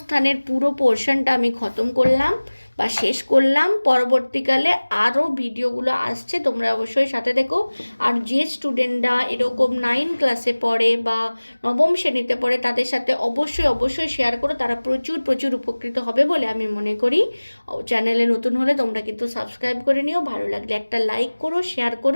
পুরো পোর্শনটা আমি খতম করলাম। বা শেষ করলাম। পরবর্তীকালে আরও ভিডিওগুলো আসছে, তোমরা অবশ্যই সাথে দেখো। আর যে স্টুডেন্টরা এরকম 9 ক্লাসে পড়ে বা নবম শ্রেণীতে পড়ে তাদের সাথে অবশ্যই শেয়ার করো, তারা প্রচুর উপকৃত হবে বলে আমি মনে করি। চ্যানেলে নতুন হলে তোমরা কিন্তু সাবস্ক্রাইব করে নিও, ভালো লাগলে একটা লাইক করো, শেয়ার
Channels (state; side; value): inverted; both; correlation -1.00